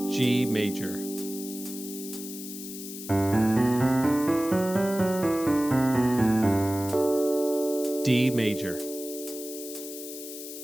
G major, D major,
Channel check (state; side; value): noise; left; hiss, 11 dB below the sound